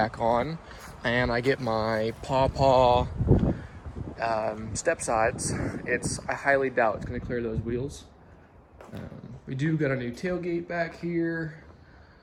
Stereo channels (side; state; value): both; identical; correlation 1.00